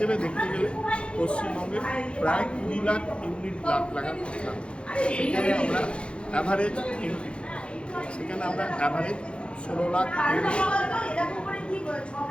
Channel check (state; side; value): late; right; 0.057 ms